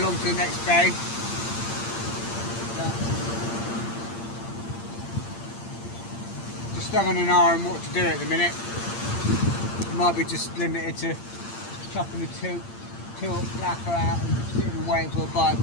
to the next bay. Just having an eye on what to do at the minute. Might be just limited to chucking the two flapper out and sitting and waiting for a bite,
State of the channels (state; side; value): late; right; 8.7 ms